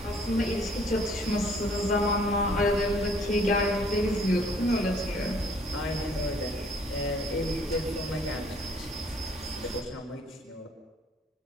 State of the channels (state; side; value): normal; both; correlation 0.60